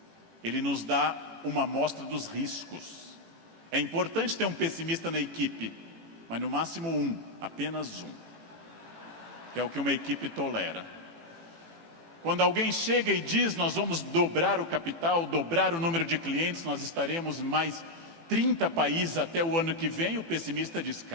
Ele nos dá uma amostra dos riscos. É importante ter um pessimista na equipe, mas no máximo um, apenas um, que é o que uma equipe tolera. Quando alguém chega e diz: nós vamos dobrar o capital, dobrar o número de clientes, nós estaremos em mais 30 países até o ano que vem, o pessimista diz:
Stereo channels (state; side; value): late; left; 18 ms